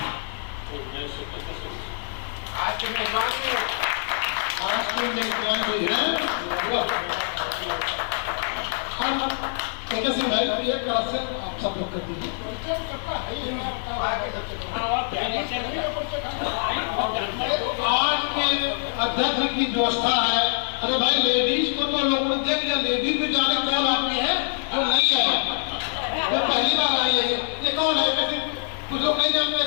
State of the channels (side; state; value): right; silent; digital silence